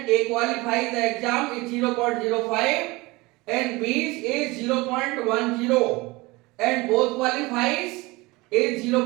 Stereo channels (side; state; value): left; quieter; 22.7 dB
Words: A qualifies the exam is 0.05 and B is 0.10 and both qualifies is